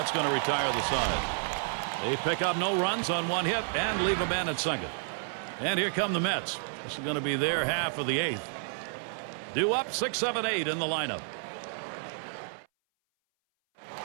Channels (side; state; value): left; silent; 58 dB below the other